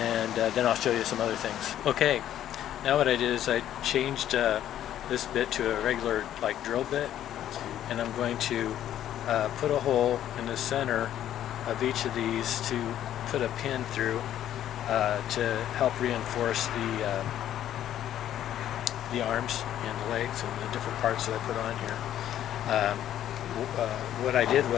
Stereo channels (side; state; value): right; quieter; 11.4 dB